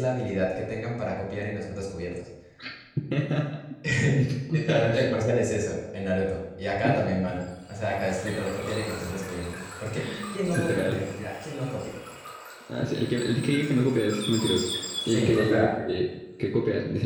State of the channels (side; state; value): both; identical; correlation 1.00